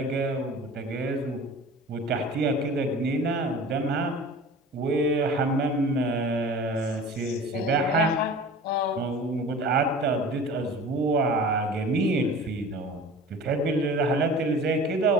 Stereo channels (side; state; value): both; normal; correlation 0.40